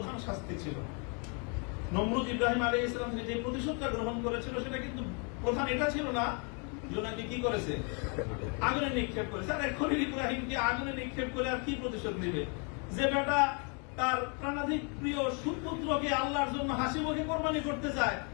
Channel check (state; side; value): quieter; right; 36.7 dB